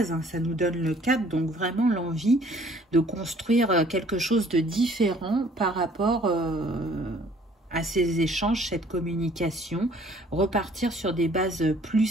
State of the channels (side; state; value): both; normal; correlation 0.57